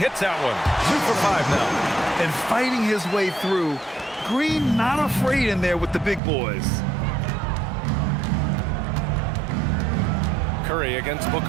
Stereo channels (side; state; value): left; drops out; at 6.2 s